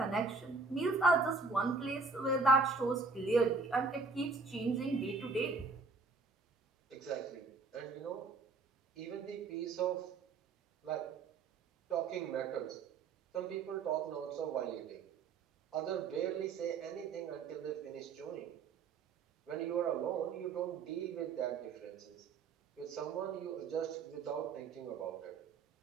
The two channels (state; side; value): quieter; left; 4.3 dB